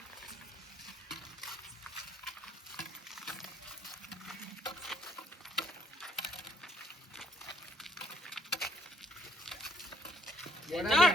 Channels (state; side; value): normal; both; correlation 0.66